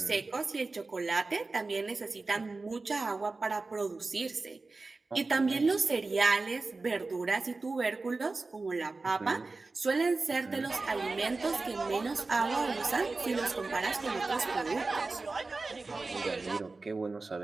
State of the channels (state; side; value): quieter; left; 3.7 dB